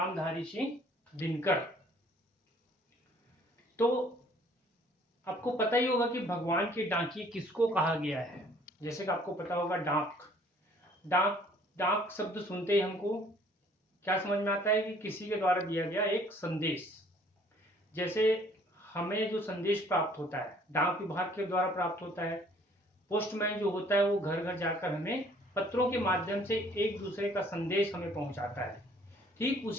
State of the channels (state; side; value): normal; both; correlation 0.58